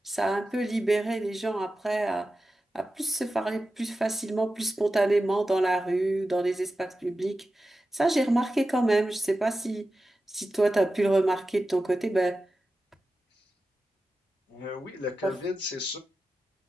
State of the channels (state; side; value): normal; both; correlation 0.93